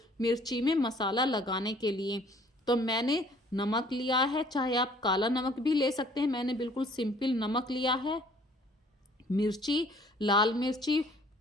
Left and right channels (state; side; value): normal; both; correlation 0.57